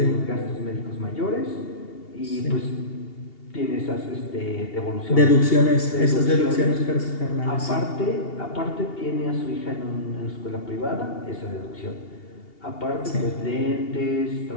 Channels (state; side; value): late; right; 2.8 ms